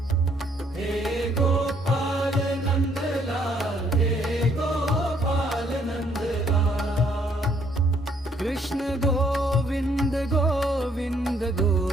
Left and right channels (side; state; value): both; normal; correlation 0.67